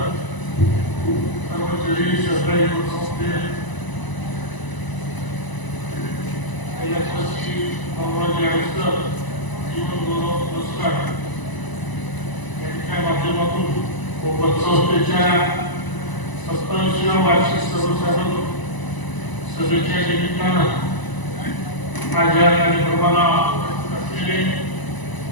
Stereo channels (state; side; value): late; right; 1.0 ms